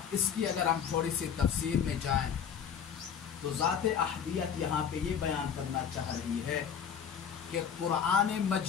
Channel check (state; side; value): quieter; right; 7.7 dB